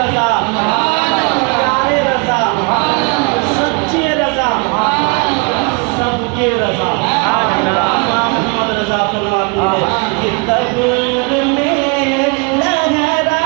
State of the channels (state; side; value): quieter; left; 31.2 dB